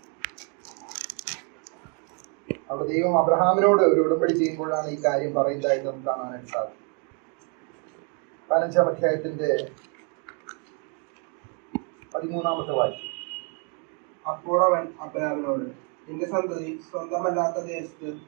അവിടെ ദൈവം അബ്രഹാമിനോട് ഒരു ഉടമ്പടി ചെയ്യുമ്പോഴാണ് ഈ കാര്യം പറയുന്നതായിട്ട് നമുക്ക് കാണാനായിട്ട് സാധിക്കും. 15 അധ്യായത്തിന്റെ 13 വാക്യം. അപ്പോൾ അവൻ അബ്രാമിനോട്, നിന്റെ സന്തതി സ്വന്തമല്ലാത്ത ദേശത്ത്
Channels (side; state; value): left; quieter; 38.4 dB